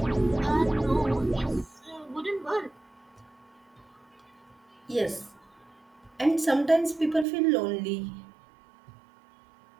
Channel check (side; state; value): left; drops out; at 7.2 s